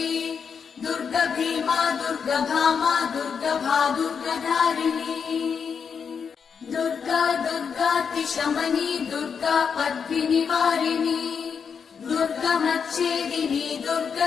दुर्गभीमा दुर्गभामा दुर्गभा दुर्गधारिणी दुर्गा दुर्गातिशमनी दुर्गा पद्मिनिवारिणी दुर्गमच्छेदिनी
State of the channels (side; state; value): right; quieter; 6.4 dB